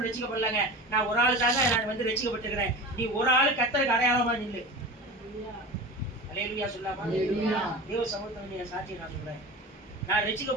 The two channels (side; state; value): both; normal; correlation 0.32